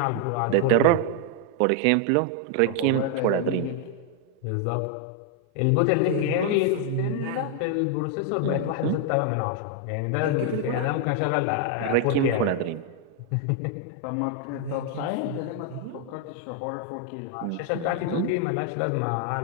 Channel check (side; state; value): both; different; correlation 0.00